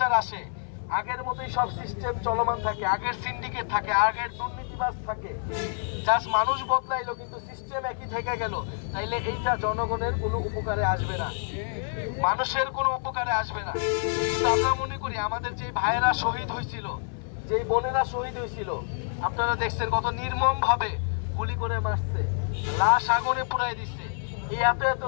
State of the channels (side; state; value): right; silent; 60 dB below the other